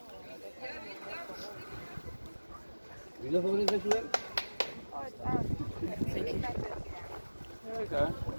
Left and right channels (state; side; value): inverted; both; correlation -1.00